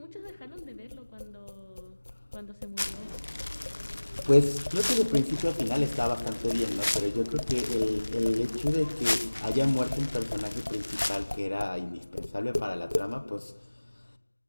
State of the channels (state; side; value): inverted; both; correlation -1.00